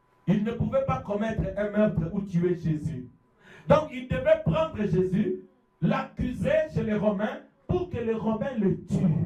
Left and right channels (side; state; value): both; identical; correlation 1.00